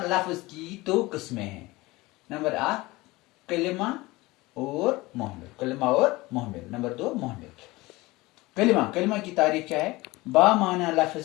लफ्ज की दो किस्में हैं। नंबर 1 कलिमा और मोहमिल, कलिमा और मोहमिल। नंबर 2 मोहमिल। कलिमा, कलिमा की तारीफ क्या है? बामाना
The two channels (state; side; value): quieter; right; 20.9 dB